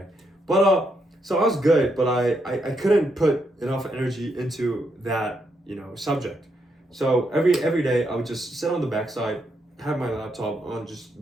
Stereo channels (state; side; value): normal; both; correlation 0.79